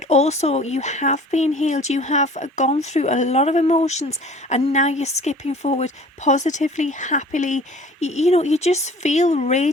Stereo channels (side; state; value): both; normal; correlation 0.47